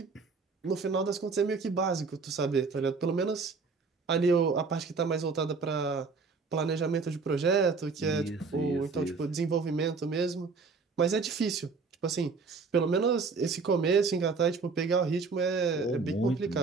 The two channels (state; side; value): quieter; left; 4.6 dB